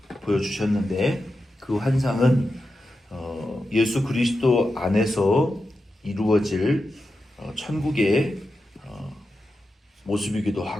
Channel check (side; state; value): both; normal; correlation 0.90